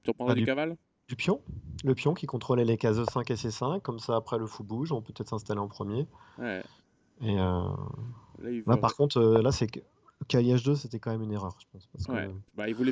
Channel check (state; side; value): identical; both; correlation 1.00